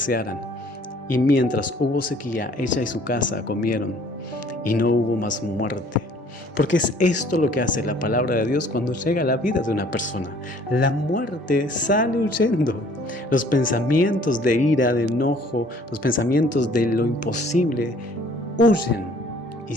Y mientras hubo sequía, ella y su casa comieron y no hubo más muerte. Porque es esto lo que hace la palabra de Dios cuando llega a la vida de una persona. La muerte sale huyendo. Los pensamientos de ira, de enojo, los pensamientos de lo imposible huyen y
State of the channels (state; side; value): normal; both; correlation 0.56